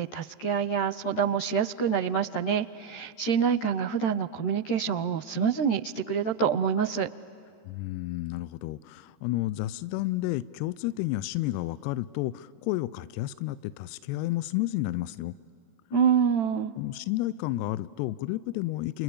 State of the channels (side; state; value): right; late; 13 ms